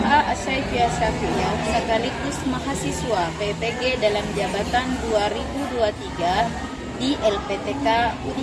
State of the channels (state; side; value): identical; both; correlation 1.00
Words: Asyafiah Syafi'iyah sekaligus mahasiswa PPG dalam jabatan 2023 di LPTK